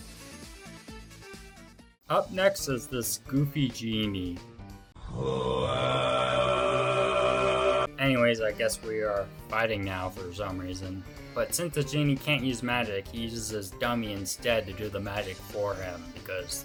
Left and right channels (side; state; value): both; identical; correlation 1.00